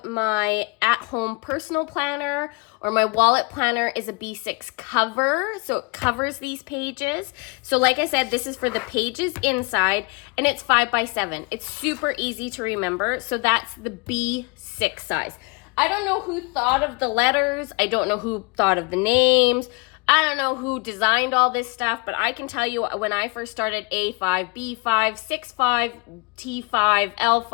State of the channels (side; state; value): right; quieter; 28.8 dB